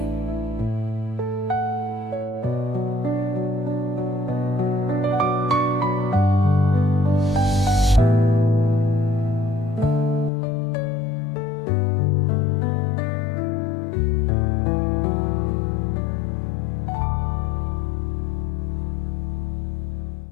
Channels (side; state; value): right; drops out; at 10.3 s